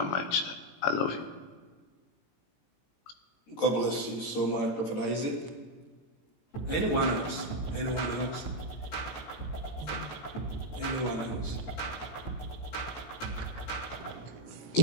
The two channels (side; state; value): right; late; 17 ms